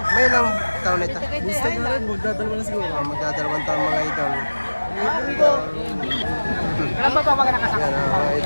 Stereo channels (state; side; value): inverted; both; correlation -1.00